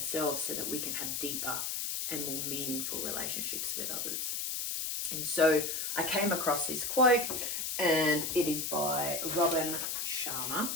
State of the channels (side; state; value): left; noise; hiss, 2 dB below the sound